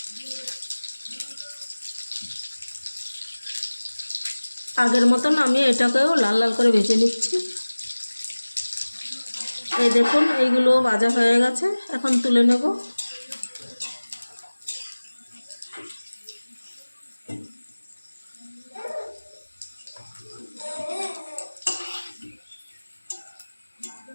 আগের মতন আমি এটাকেও লাল লাল করে ভেজে নিচ্ছি। এই দেখুন এইগুলো ভাজা হয়ে গেছে, এখন তুলে নেব।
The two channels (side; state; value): both; inverted; correlation -1.00